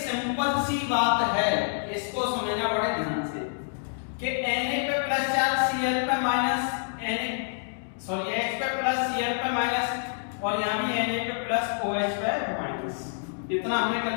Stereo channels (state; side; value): silent; right; digital silence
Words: सी बात है, इसको समझना बड़े ध्यान से कि Na पे प्लस चार्ज Cl पे माइनस H पे प्लस Cl पे माइनस और यहां भी Na पे प्लस OH पे माइनस। इतना हमने कर